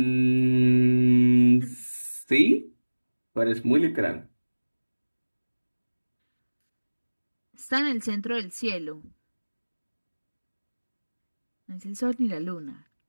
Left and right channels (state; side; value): inverted; both; correlation -1.00